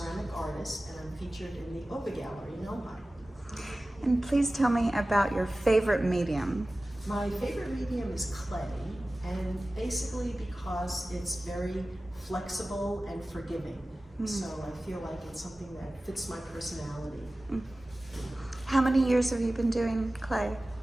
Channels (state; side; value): normal; both; correlation 0.97